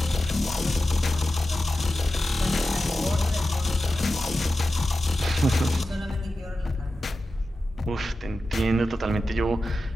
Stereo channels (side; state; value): both; normal; correlation 0.92